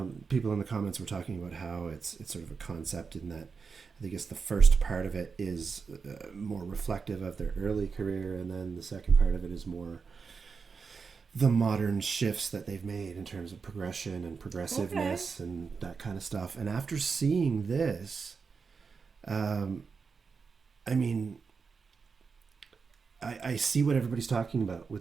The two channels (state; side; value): quieter; left; 5.2 dB